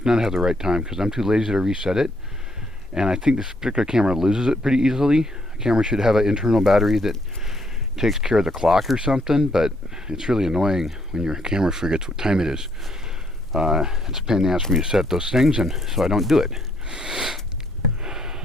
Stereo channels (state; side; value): normal; both; correlation 0.71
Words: not have the right time because I'm too lazy to reset it, and I think this particular camera loses it pretty easily. A camera should have an internal battery that takes care of the clock or something, but it's really annoying when your camera forgets what time it is. It's a pain in the ass for me to set those things, and so I don't do it.